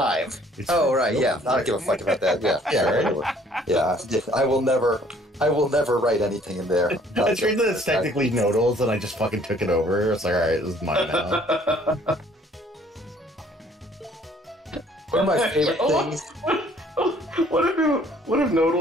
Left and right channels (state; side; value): normal; both; correlation 0.59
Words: It's Oh, for right, guilty yeah. I don't give a fuck about that. Yeah, yeah, right. Yeah, I will never write anything in there. It's weird that it's technically Nodal's, and I just fucking took it over. It's like, alright, this is mine now. One of my favorite things. What if